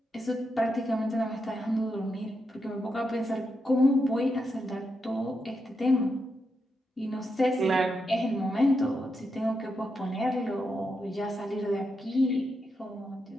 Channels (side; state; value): both; normal; correlation 0.84